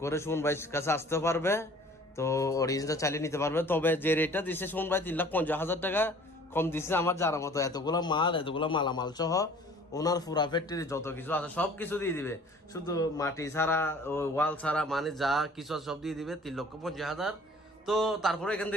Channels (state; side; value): normal; both; correlation 0.50